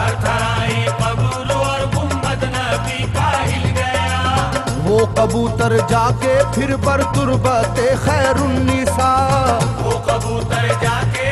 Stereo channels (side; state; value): both; identical; correlation 1.00